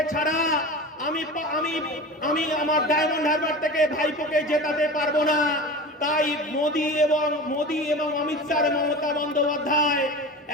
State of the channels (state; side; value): normal; both; correlation 0.32